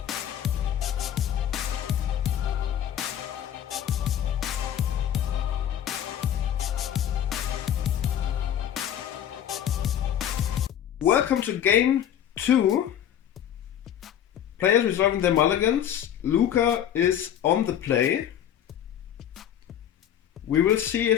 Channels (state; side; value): quieter; right; 10.2 dB